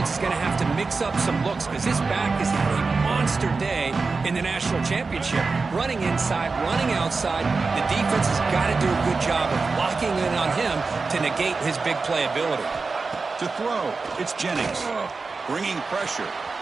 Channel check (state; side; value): quieter; left; 4.2 dB